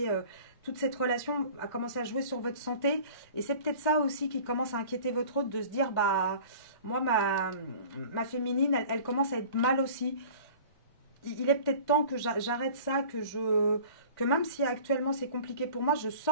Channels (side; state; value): both; inverted; correlation -0.44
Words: toute cette relation a commencé à jouer sur votre santé. Et c'est peut-être ça aussi qui commence à inquiéter votre autre, de se dire, bah, moi, ma féminine, elle commence à être mal aussi. Il est peut-être temps que j'arrête ça, que même si actuellement c'est compliqué pour moi, je